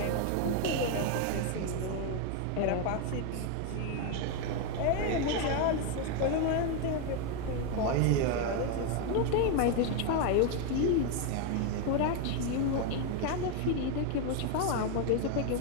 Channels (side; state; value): both; different; correlation 0.01